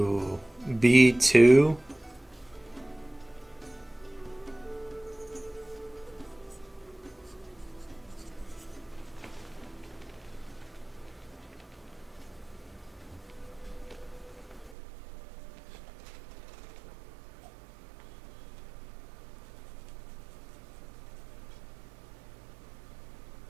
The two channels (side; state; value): left; drops out; at 14.8 s